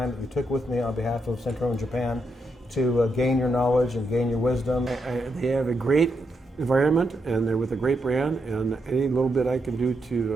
that you took with me on behalf of Central and Japan to gain your knowledge and gain your wisdom. They have a great environment and they're with a great brand, and any little bit I can do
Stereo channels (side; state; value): both; normal; correlation 0.81